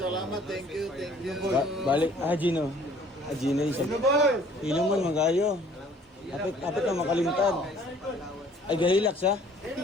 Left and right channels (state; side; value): normal; both; correlation 0.55